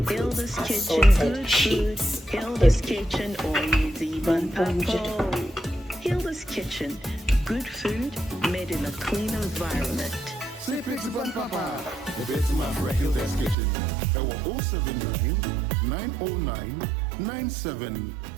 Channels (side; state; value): left; drops out; at 13.6 s